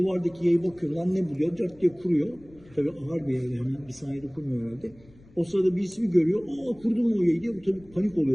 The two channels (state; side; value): noise; left; rumble, 26 dB below the sound